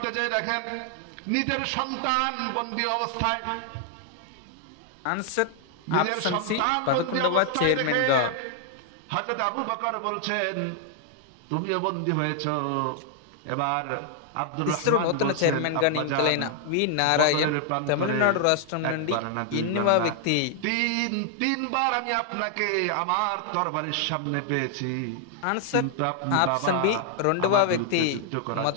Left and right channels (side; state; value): both; different; correlation 0.00